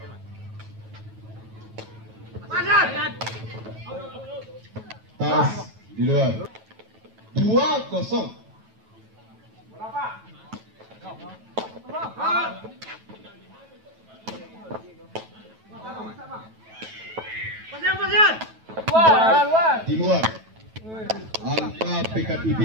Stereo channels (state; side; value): late; left; 9.2 ms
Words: Tas di luar 2-0. Di luar angka